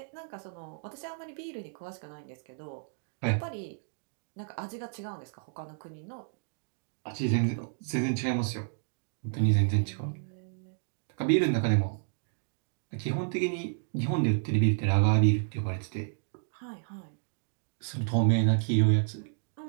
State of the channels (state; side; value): silent; left; digital silence